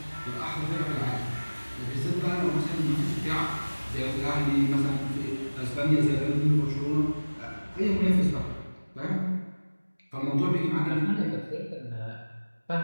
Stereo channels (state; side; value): inverted; both; correlation -1.00